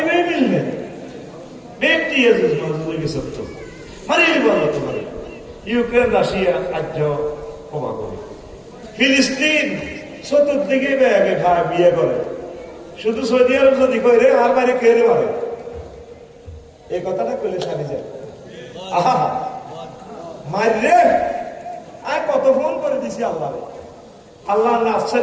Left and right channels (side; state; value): both; identical; correlation 1.00